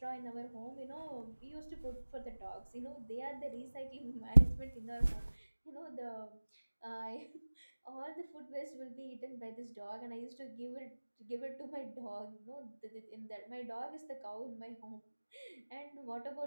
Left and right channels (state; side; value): inverted; both; correlation -1.00